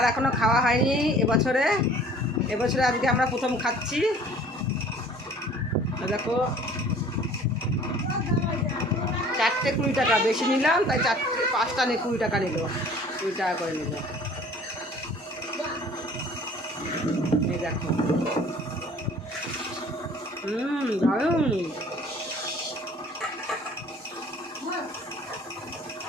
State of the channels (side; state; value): both; normal; correlation 0.50